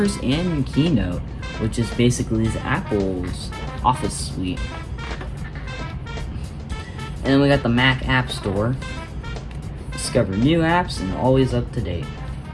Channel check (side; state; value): both; identical; correlation 1.00